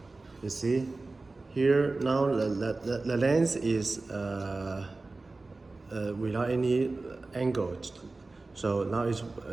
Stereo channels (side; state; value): left; quieter; 3.4 dB